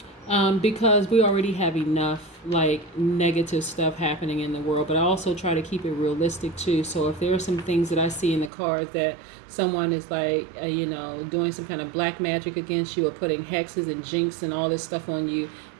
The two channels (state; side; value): drops out; left; at 8.5 s